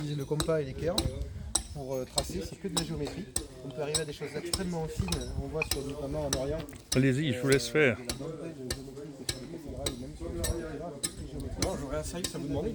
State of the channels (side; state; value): both; identical; correlation 1.00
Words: le compas et l'équerre pour tracer, c'est que de la géométrie. On peut arriver à des choses extrêmement fines, on voit notamment en Orient. Allez-y, je vous laisse faire. Non, j'aurais un service à vous demander.